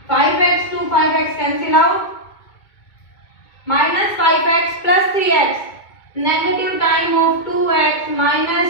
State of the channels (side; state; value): right; late; 2.2 ms